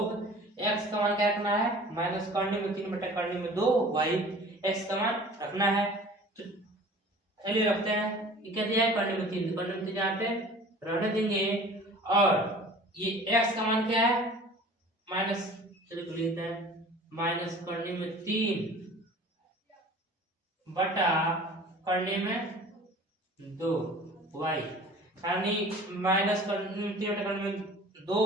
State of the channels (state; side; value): normal; both; correlation 0.45